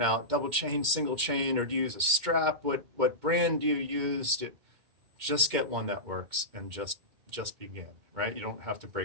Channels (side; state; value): left; late; 2.1 ms